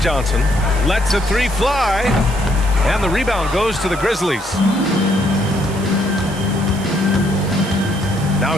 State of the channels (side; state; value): right; noise; hiss, 16 dB below the sound